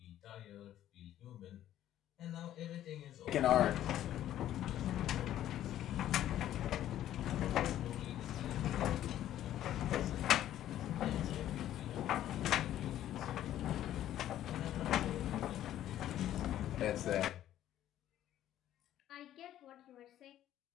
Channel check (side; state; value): right; quieter; 12.3 dB